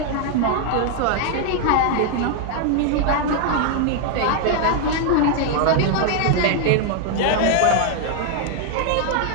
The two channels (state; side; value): different; both; correlation 0.00